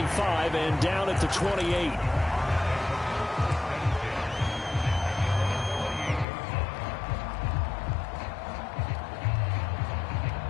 and down at the 28.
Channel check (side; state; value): right; drops out; at 6.2 s